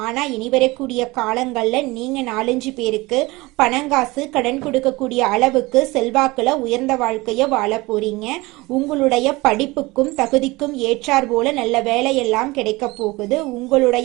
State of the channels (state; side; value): quieter; left; 22.1 dB